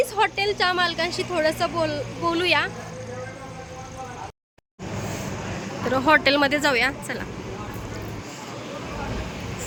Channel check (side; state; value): both; identical; correlation 1.00